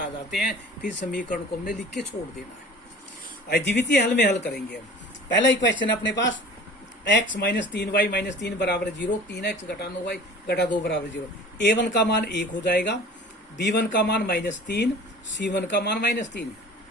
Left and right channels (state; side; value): normal; both; correlation 0.43